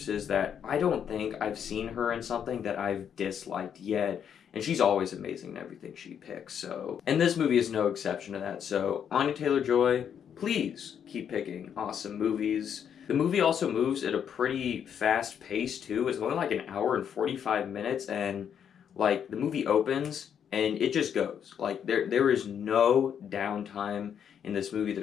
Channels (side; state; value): right; quieter; 8.3 dB